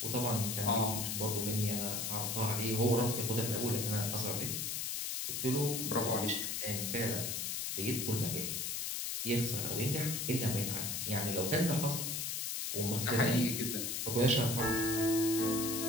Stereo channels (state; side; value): noise; left; hiss, 2 dB below the sound